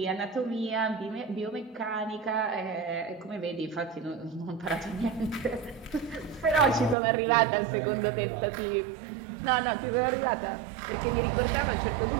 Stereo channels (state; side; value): drops out; left; at 7.0 s